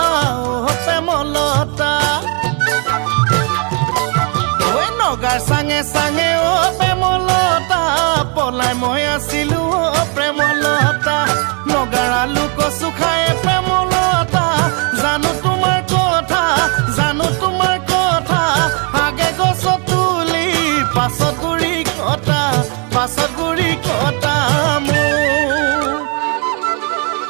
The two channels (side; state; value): left; quieter; 35.8 dB